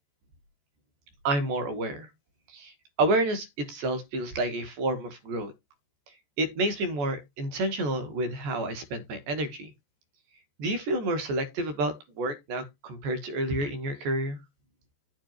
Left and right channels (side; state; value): left; late; 14 ms